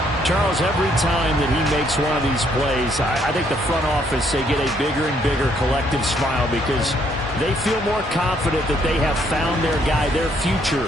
Charles, every time that he makes one of these plays, I think the front office, they get a bigger and bigger collective smile because they feel more confident that they have found their guy, their future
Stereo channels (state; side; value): normal; both; correlation 0.69